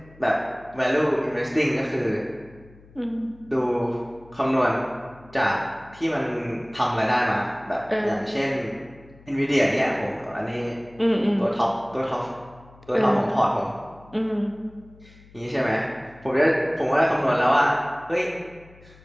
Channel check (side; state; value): left; noise; hum, 24 dB below the sound